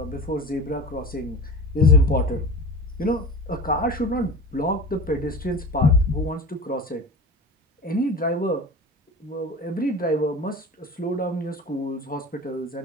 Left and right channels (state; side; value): normal; both; correlation 0.33